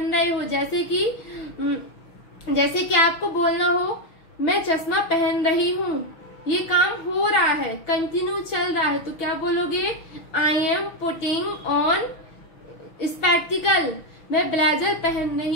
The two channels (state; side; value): late; right; 6.2 ms